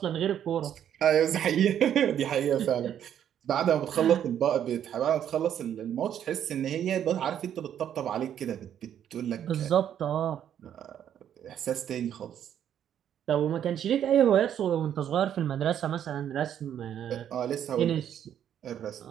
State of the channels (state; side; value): quieter; left; 9.8 dB